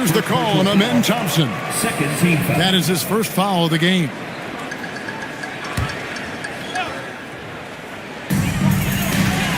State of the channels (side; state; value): both; identical; correlation 1.00